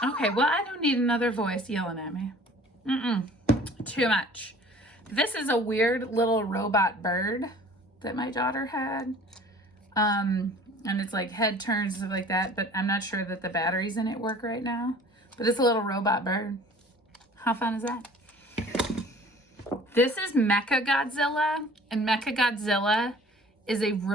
Okay, well, I don't need another voice yelling at me. Too much. This is a weird little robot bird that my daughter had. And it's like head turns, stuff like that, but I'm not sure that the batteries in it work right now. But it's a little robot bird. How fun is that? This is Mechagodzilla, and Mechagodzilla is a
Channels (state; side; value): normal; both; correlation 0.48